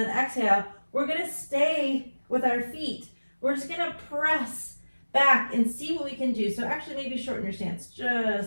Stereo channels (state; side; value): inverted; both; correlation -1.00